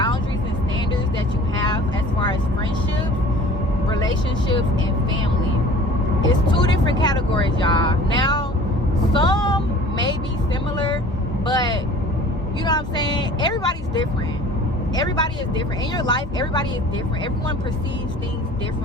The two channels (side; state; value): both; normal; correlation 0.45